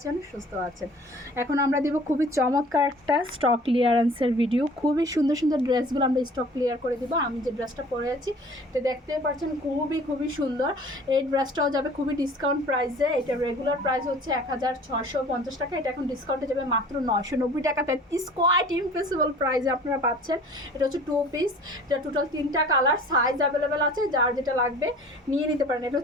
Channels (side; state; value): both; normal; correlation 0.47